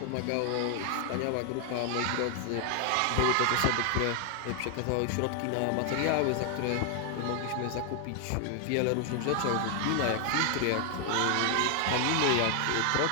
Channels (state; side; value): different; both; correlation 0.00